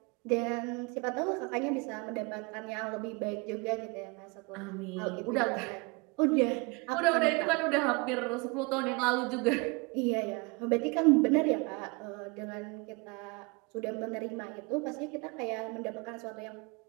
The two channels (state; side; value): quieter; left; 29.0 dB